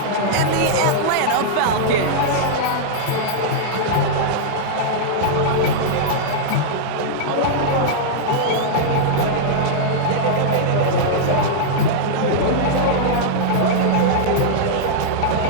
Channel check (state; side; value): different; both; correlation -0.02